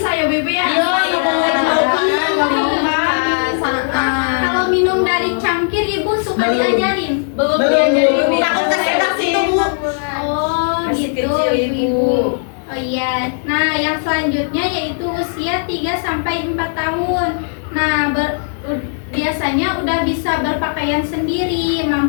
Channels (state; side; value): silent; right; digital silence